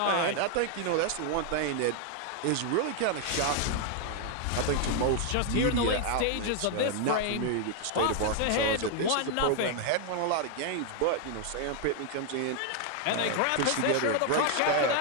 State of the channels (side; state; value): both; different; correlation 0.00